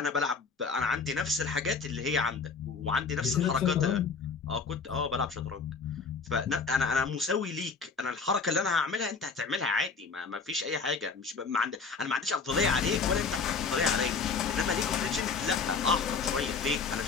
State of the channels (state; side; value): quieter; right; 5.0 dB